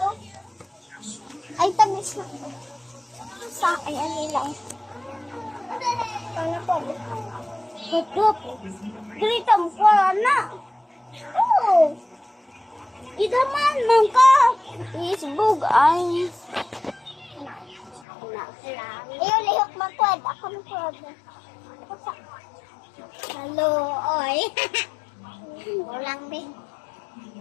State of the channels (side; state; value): right; drops out; at 18.1 s